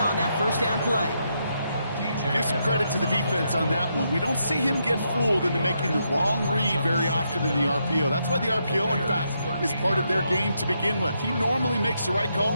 that first down play. Give some credit to the defense on that one. We don't see him get fooled into making the wrong read very often in the RPO. That's why the RPO, in fact, is part of their game to begin with. He normally makes the right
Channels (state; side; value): inverted; both; correlation -0.80